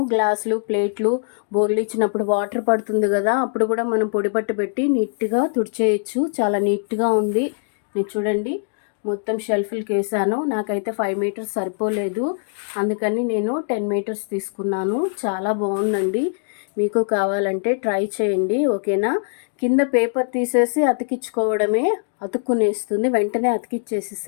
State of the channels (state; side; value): silent; right; digital silence